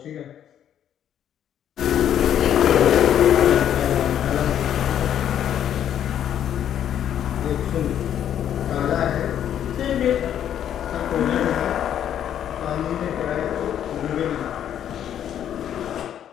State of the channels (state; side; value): quieter; right; 10.0 dB